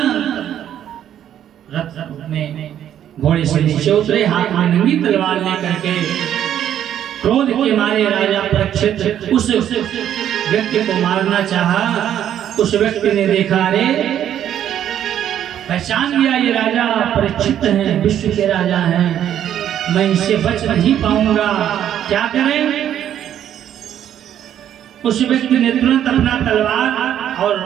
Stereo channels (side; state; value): left; quieter; 10.4 dB